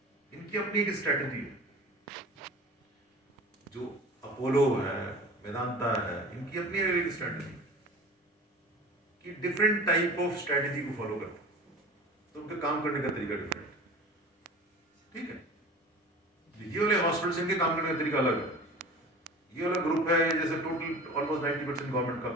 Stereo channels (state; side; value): normal; both; correlation 0.38